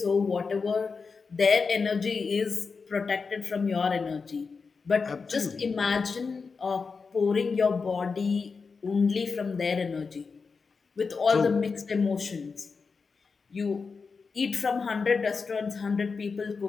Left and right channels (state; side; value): quieter; right; 4.9 dB